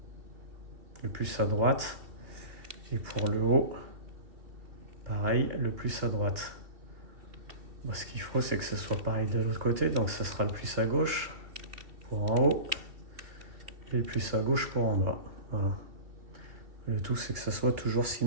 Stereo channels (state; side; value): late; left; 2.6 ms